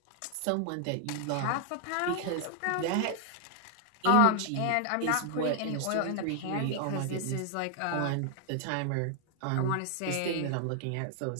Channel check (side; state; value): both; different; correlation 0.00